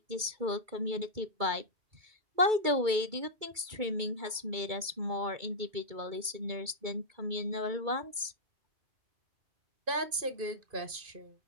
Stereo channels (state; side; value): late; left; 2.3 ms